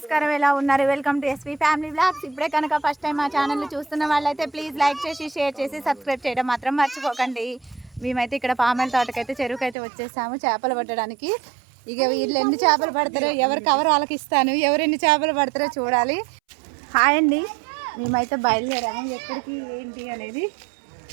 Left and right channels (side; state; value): left; drops out; at 9.8 s